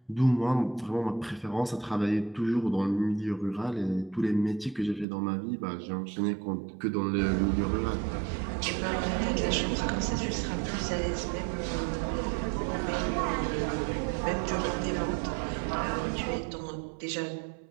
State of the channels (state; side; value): drops out; left; at 5.1 s